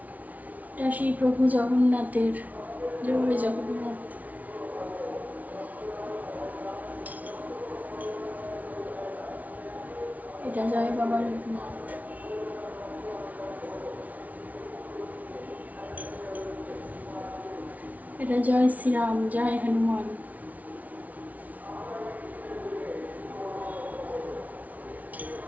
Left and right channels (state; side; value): late; left; 0.072 ms